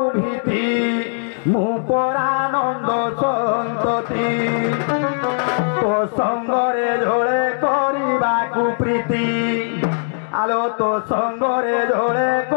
ভীতি মু পরানন্দ সন্ততি তো সঙ্গরে ঝোলে করিবাকু প্রীতি আলো তো সঙ্গরে ঝোলে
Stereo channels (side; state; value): right; silent; digital silence